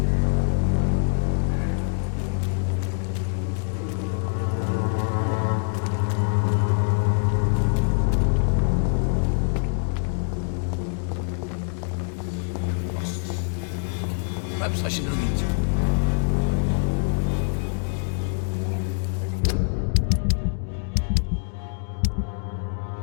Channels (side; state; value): right; silent; 57 dB below the other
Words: perhaps I should read.